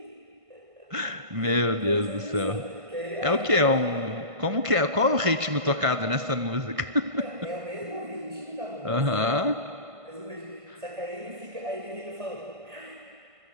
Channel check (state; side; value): late; left; 1.5 ms